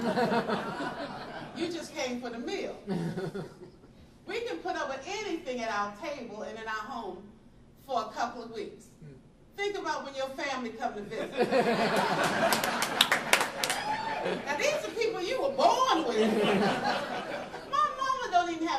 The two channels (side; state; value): both; identical; correlation 1.00